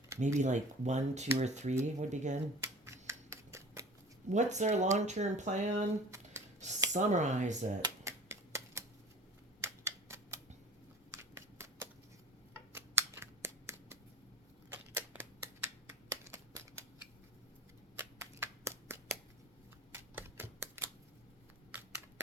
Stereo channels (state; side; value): normal; both; correlation 0.40